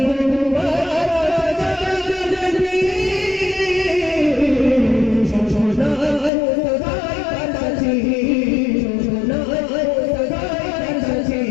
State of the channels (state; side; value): drops out; right; at 6.3 s